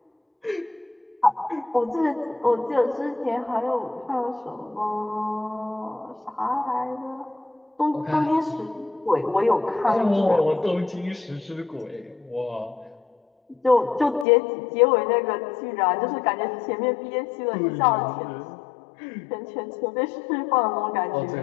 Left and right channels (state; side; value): drops out; right; at 14.2 s